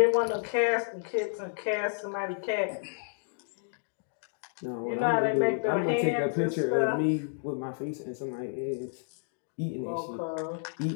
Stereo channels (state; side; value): silent; right; digital silence